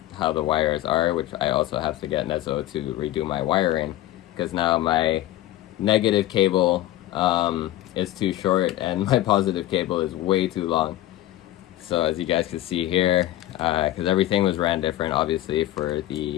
how the wires are, which I also have to get Nezo to redo my wiring, because now my negative cable is too short and my positive cable is way too long. So as you guys can see here, because everything was ran different obviously for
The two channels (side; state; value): right; quieter; 14.6 dB